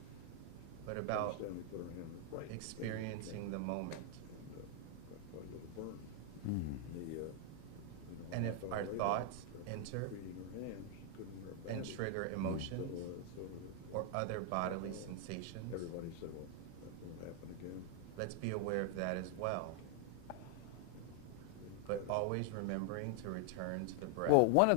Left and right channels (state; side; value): different; both; correlation 0.00